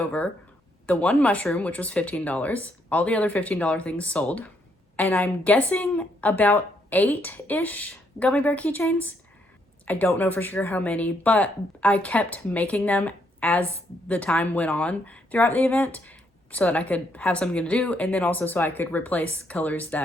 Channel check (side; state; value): both; normal; correlation 0.73